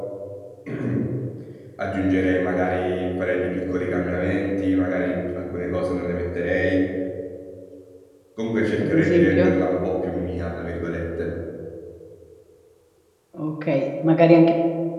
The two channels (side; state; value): both; identical; correlation 1.00